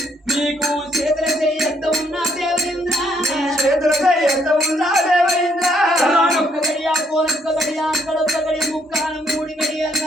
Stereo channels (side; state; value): both; normal; correlation 0.69